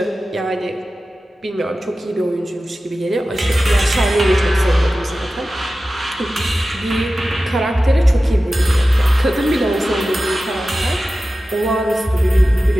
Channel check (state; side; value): normal; both; correlation 0.94